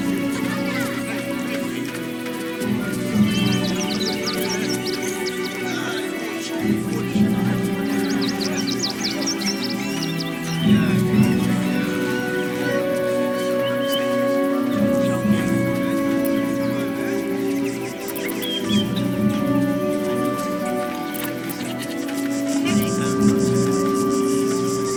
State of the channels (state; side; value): identical; both; correlation 1.00